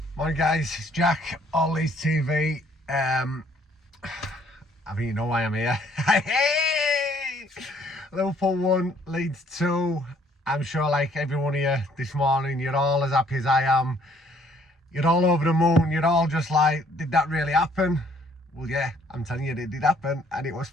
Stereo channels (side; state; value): both; normal; correlation 0.63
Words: Morning guys, it's Jack, All Leeds TV. I think you know why I'm here. Hey! Liverpool 1, Leeds 2. I'm sure like everyone here this morning, you're all as happy as I am. You're all over the moon, you're all just like, did that really happen? Well yeah, I'm telling you, it did happen and it was